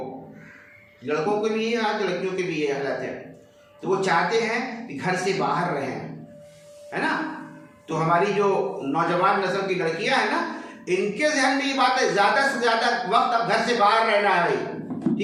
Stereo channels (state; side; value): identical; both; correlation 1.00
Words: लड़कों को भी ये हालत, लड़कियों की भी ये हालत है। तो वो चाहते हैं कि घर से बाहर रहें, है ना। तो हमारी जो नौजवान नस्ल की लड़कियां हैं ना, इनके ध्यान में ये बात है, ज्यादा से ज्यादा वक्त अब घर से बाहर रहना है भाई,